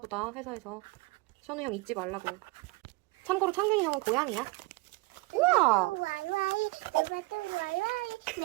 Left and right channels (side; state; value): left; quieter; 24.2 dB